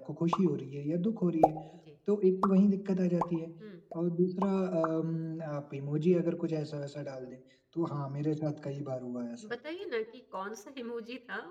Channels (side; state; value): both; identical; correlation 1.00